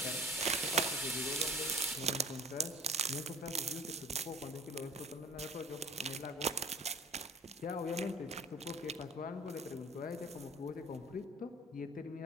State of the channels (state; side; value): normal; both; correlation 0.44